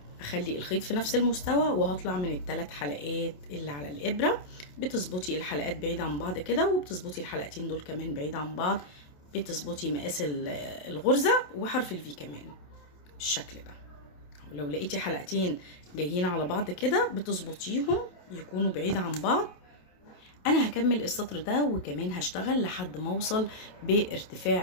اخلي الخيط في نفس المستوى، وهطلع من الثلاث حلقات اللي على الابره. بتظبطي الحلقات بعيد عن بعض كده، وبتظبطي الحلقتين دول كمان بعيد عن بعض، بتظبطي مقاس الغرزه وحرف الفي كمان بالشكل ده. ولو لقيتي حلقتين جايين على بعض كده بتظبطيهم يكونوا بعيد عن بعض. انا هكمل السطر ده وكمان هشتغل لحد ما اوصل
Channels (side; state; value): right; late; 27 ms